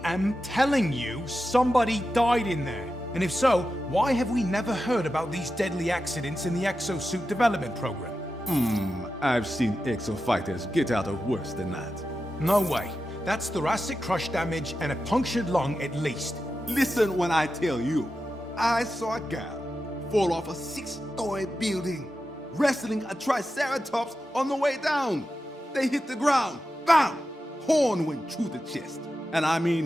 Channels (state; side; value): normal; both; correlation 0.91